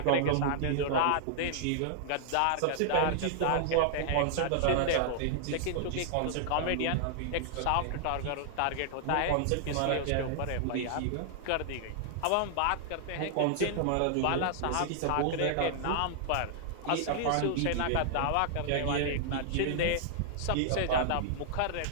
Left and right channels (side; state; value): both; different; correlation -0.01